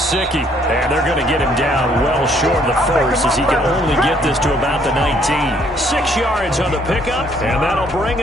and they're going to get him down well short of the first as he can only get this to about the 19. 6 yards on the pickup, and that'll bring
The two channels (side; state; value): both; normal; correlation 0.65